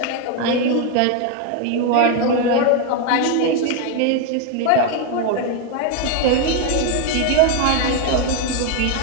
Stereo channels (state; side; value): different; both; correlation 0.01